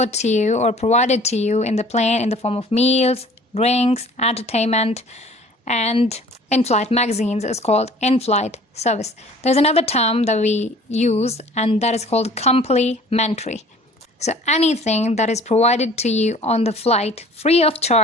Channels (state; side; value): normal; both; correlation 0.50